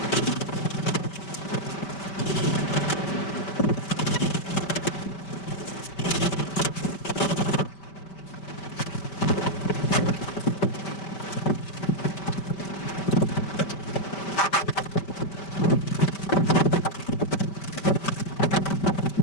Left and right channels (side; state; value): right; late; 5.2 ms